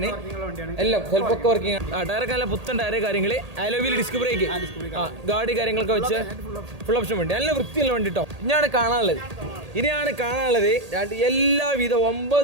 എല്ലാം സെൽഫൊക്കെ വർക്കിംഗ്. ടയറൊക്കെ നല്ല പുത്തൻ ടയർ കാര്യങ്ങൾ, അലോവിൽ ഡിസ്ക് ബ്രേക്ക്, ഗാഡി കാര്യങ്ങളൊക്കെ വെച്ച് ഫുൾ ഓപ്ഷൻ വണ്ടി, നല്ല വൃത്തിയുള്ള വണ്ടി കേട്ടോ. ഇനിയാണ് കാണാനുള്ളത് എല്ലാവിധ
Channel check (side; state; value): left; late; 1.8 ms